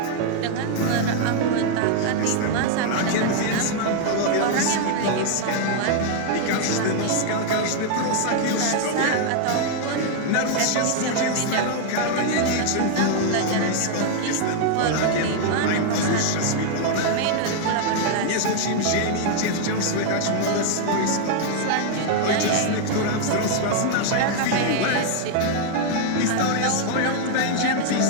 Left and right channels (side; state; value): both; different; correlation 0.00